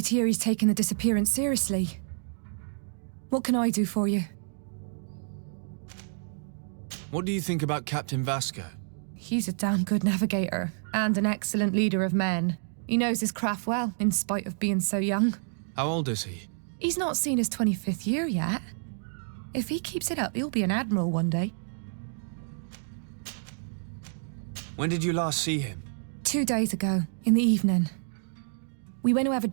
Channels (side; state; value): left; silent; digital silence